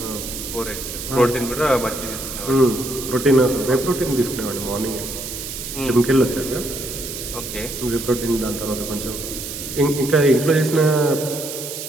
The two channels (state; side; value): noise; right; hiss, 8 dB below the sound